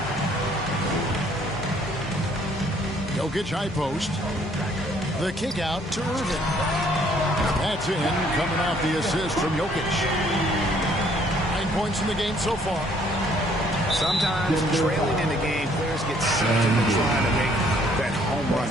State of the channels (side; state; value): both; normal; correlation 0.63